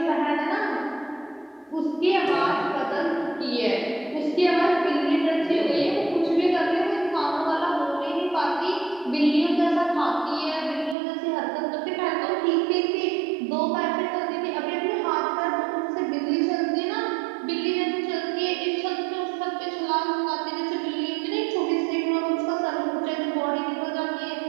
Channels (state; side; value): drops out; left; at 11.0 s